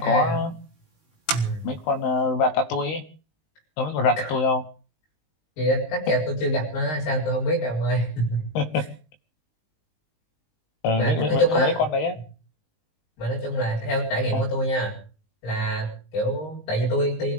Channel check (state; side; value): late; right; 19 ms